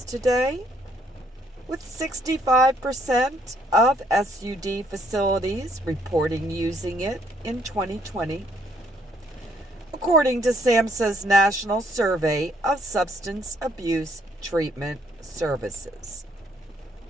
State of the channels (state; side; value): normal; both; correlation 0.68